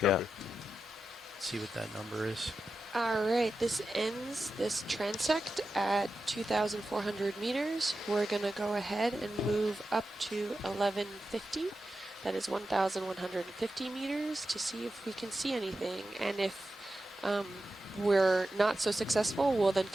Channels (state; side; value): normal; both; correlation 0.91